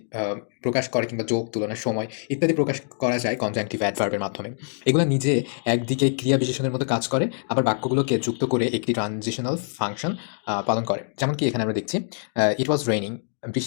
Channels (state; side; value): silent; right; 58 dB below the other